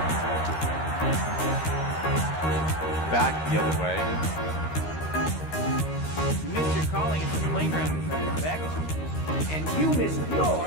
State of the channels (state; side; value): late; right; 13 ms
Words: Back the other way. You missed your calling at the playground, Beck. And you missed